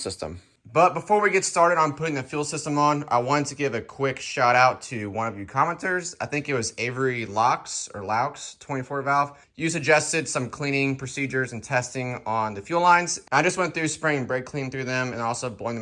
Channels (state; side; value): identical; both; correlation 1.00